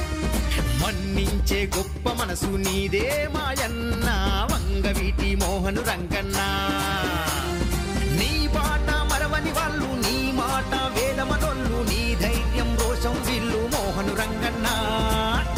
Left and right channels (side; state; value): both; identical; correlation 1.00